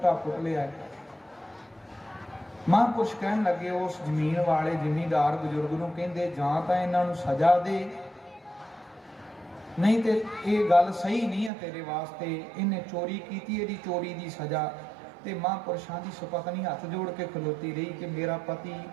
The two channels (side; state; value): left; drops out; at 11.5 s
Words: ਪੁੱਟ ਲਿਆ? ਮਹਾਂਪੁਰਸ਼ ਕਹਿਣ ਲੱਗੇ ਉਸ ਜ਼ਮੀਨ ਵਾਲੇ ਜ਼ਿਮੀਂਦਾਰ ਬਜ਼ੁਰਗ ਨੂੰ, ਕਹਿੰਦੇ ਜਾਂ ਤਾਂ ਇਹਨਾਂ ਨੂੰ ਸਜ਼ਾ ਦੇ, ਨਹੀਂ ਤੇ ਇਹ ਗੱਲ ਸਹੀ ਨਹੀਂ ਹੈ ਤੇਰੇ ਵਾਸਤੇ, ਇਹਨੇ ਚੋਰੀ ਕੀਤੀ, ਇਹਦੀ ਚੋਰੀ ਦੀ ਸਜ਼ਾ। ਤੇ ਮਹਾਂਪੁਰਸ਼ਾਂ ਦੀ ਸੁਪਤਨੀ ਹੱਥ ਜੋੜ ਕੇ ਖਲੋਤੀ ਰਹੀ ਕਿ ਮੇਰਾ ਪਤੀ